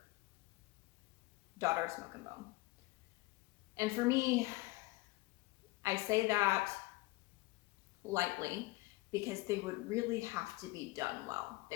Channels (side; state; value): right; quieter; 21.3 dB